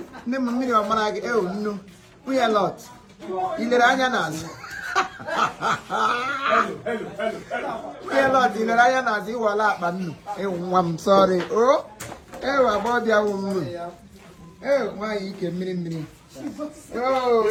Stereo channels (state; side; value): identical; both; correlation 1.00